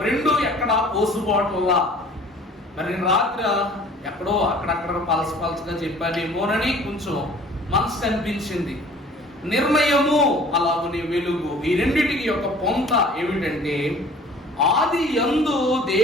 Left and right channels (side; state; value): both; normal; correlation 0.49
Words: రెండు ఎక్కడ పోసుబాటులా, మరి నేను రాత్రి ఎక్కడో అక్కడక్కడ పలసగా చెప్పానేమోనని కొంచెం మనసు అనిపించింది. నిర్ణయము అలాగనే వెలుగు, ఈ రెండిటికి యొక్క పొంత ఏమిటంటే ఆది యందు